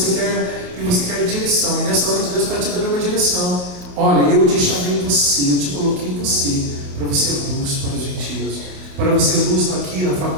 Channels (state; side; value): late; left; 28 ms